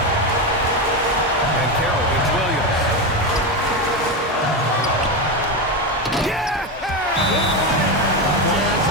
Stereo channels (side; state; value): both; normal; correlation 0.14